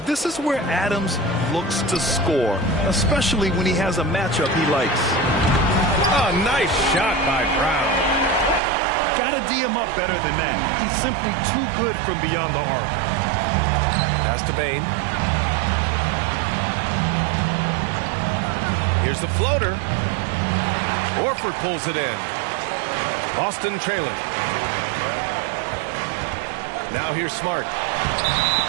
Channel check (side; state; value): left; drops out; at 8.6 s